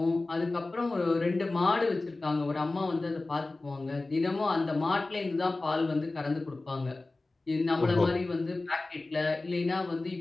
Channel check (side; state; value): right; quieter; 3.2 dB